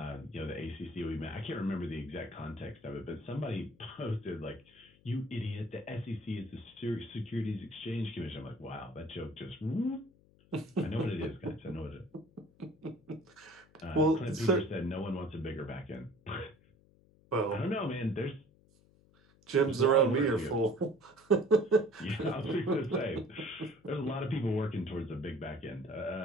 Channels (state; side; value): noise; left; hum, 29 dB below the sound